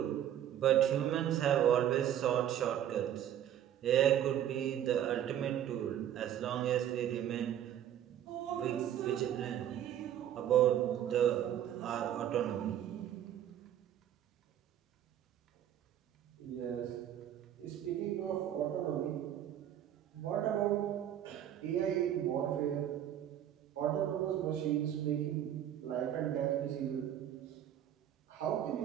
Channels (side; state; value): left; quieter; 10.8 dB